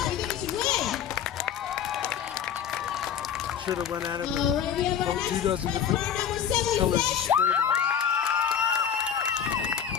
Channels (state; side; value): quieter; right; 8.5 dB